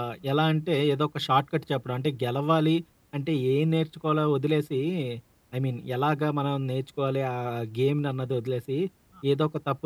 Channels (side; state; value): both; identical; correlation 1.00